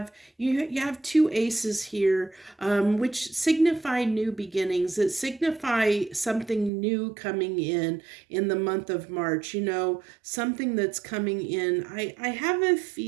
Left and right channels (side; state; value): left; drops out; at 6.7 s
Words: two aces here, which signify new beginnings. That signify something new coming in the month of March. Something that's coming in. I have a